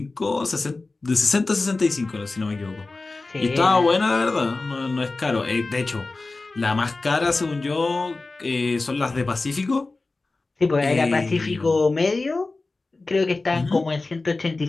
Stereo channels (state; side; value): quieter; right; 3.5 dB